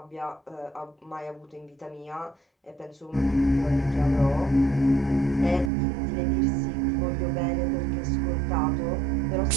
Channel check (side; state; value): left; drops out; at 5.7 s